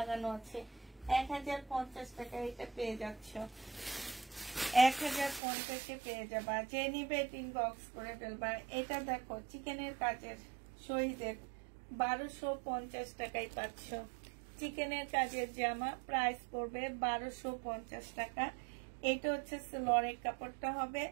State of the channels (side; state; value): left; drops out; at 5.4 s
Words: আছে। 1050 টাকা এটা পেয়ে যাচ্ছ, 1050-এ পেয়ে যাবা। যে নিবে ইনবক্স করে ফেলবা। এটা দেখো, চিকেনের কাজের শহীদের 1250 টাকায় পাচ্ছ। চিকেনের কাজের জামা, প্রাইস পড়বে 1250 টাকা। এটা হচ্ছে সেলোয়ারের কাপড়টা হবে,